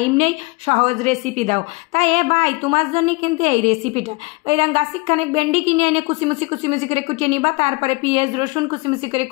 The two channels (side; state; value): right; quieter; 26.8 dB